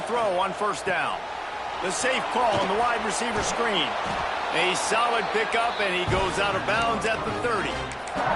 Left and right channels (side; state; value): both; identical; correlation 1.00